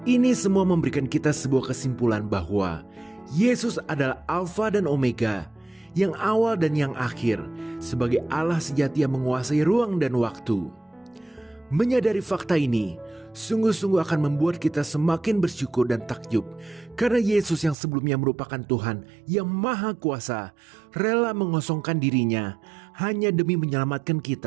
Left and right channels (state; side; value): drops out; left; at 17.8 s